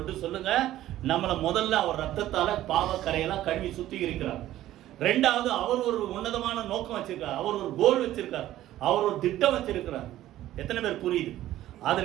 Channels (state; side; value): quieter; left; 13.9 dB